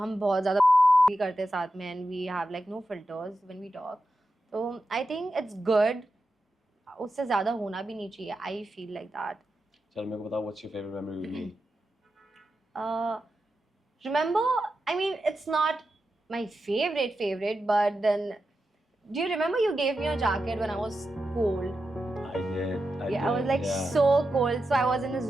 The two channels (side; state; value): both; normal; correlation 0.90